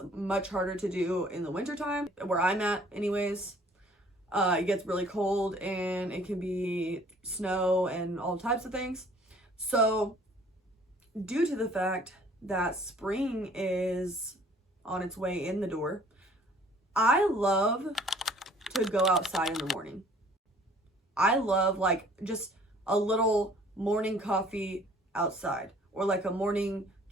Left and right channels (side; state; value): both; normal; correlation 0.55